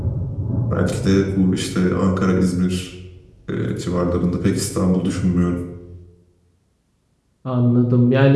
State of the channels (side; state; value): both; identical; correlation 1.00